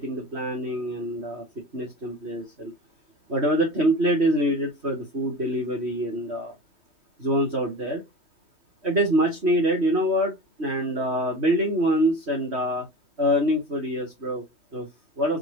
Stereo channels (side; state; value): left; late; 3.1 ms